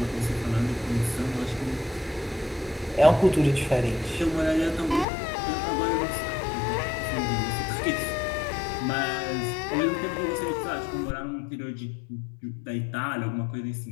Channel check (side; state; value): right; drops out; at 5.1 s